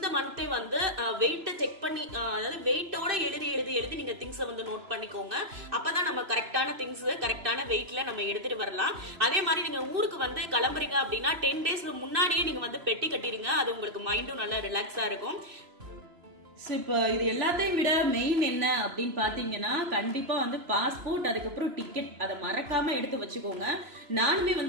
மந்தே வந்து வெயிட்ட செக் பண்ணி அதாவது வெயிட்டோட எழுதி நீங்க திங்ஸ் வந்து நோட் பண்ணிக்கோங்க. அப்பதான் நம்ம கரெக்டான திங்ஸ் கரெக்டான வெயிட்ல நம்ம எடுத்துட்டு வரலாம். அதே மாதிரி நீங்க ஊருக்கு வந்து கிளம்புறீங்க அப்படின்னா 10 days முன்னாடியே நீங்க வந்து பெட்டி கட்டிருங்க. அது உங்களுக்கு மைண்டும் நல்லா ரிலாக்ஸா இருக்கும். இப்போ இது எல்லாத்தையும் விட மெயின் என்ன அப்படின்னு பாத்தீங்கன்னா கண்டிப்பா வந்து பாஸ்போர்ட், அதுக்கப்புறம் டிக்கெட், அதை மறக்காம எடுத்து வச்சுக்கோங்க. நானுமே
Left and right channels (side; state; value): left; late; 3.0 ms